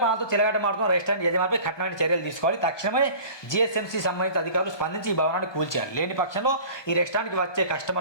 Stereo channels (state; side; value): late; right; 1.2 ms